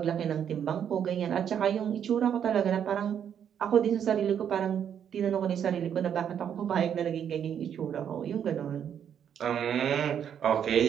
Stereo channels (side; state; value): left; quieter; 8.7 dB